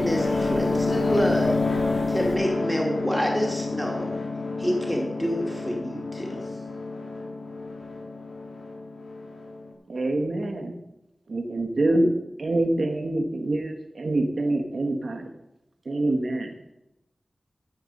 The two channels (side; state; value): both; normal; correlation 0.94